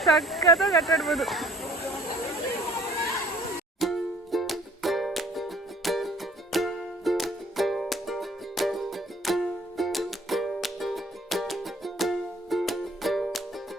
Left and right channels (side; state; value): both; normal; correlation 0.55